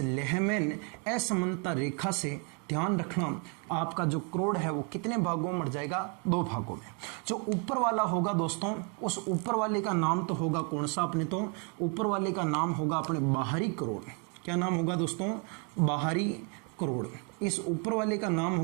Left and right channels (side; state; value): left; quieter; 36.9 dB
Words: लेहमैन असमानता रेखा से ध्यान रखना आपका जो करोड़ है वो कितने भागों में मर जाएगा? 2 भागों में। जो ऊपर वाला होगा दोस्तों, उस ऊपर वाले का नाम तो होगा कौन सा? अपने तो ऊपर वाले का नाम होगा अपने बाहरी करोड़। क्या नाम होगा दोस्तों? बाहरी करोड़। इस ऊपर वाले का नाम